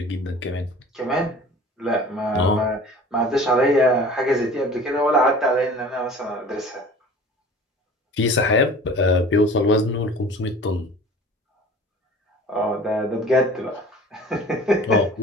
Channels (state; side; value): normal; both; correlation 0.43